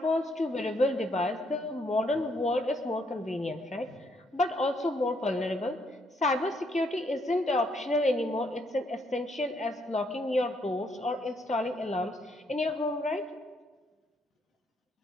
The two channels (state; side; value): normal; both; correlation 0.73